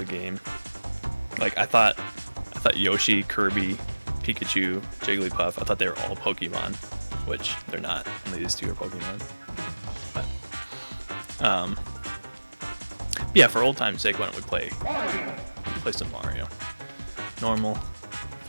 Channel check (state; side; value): inverted; both; correlation -1.00